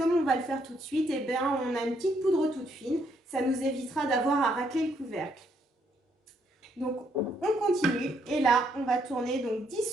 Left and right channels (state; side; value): normal; both; correlation 0.72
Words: on va le faire tout de suite, eh bien on a une petite poudre toute fine. Ça nous évitera d'avoir à racler le couvercle. Donc on continue et là on va tourner donc 10